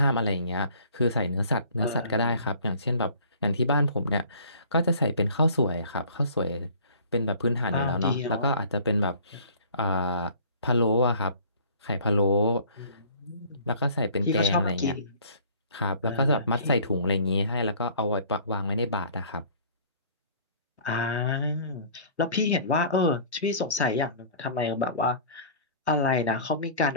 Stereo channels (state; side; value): inverted; both; correlation -0.49